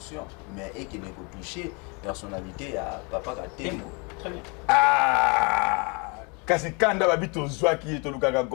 mais et qui ne peut toucher personnalité ya papa Katembo. Très bien. Kasi kanda babi tozwaki ye tolukaka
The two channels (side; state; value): right; quieter; 31.8 dB